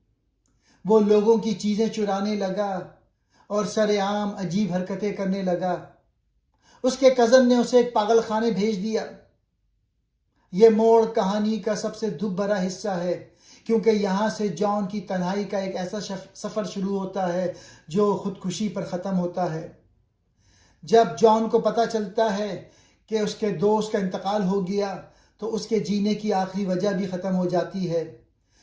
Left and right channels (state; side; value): identical; both; correlation 1.00